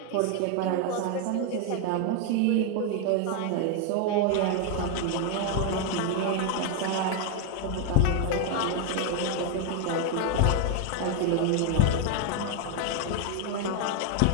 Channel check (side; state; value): both; different; correlation 0.01